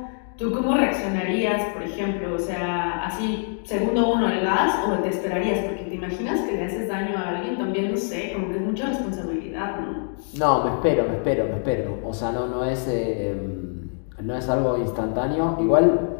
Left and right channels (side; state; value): right; silent; 60 dB below the other